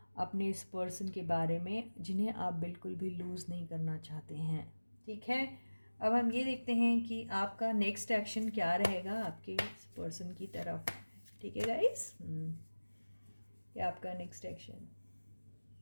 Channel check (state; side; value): inverted; both; correlation -1.00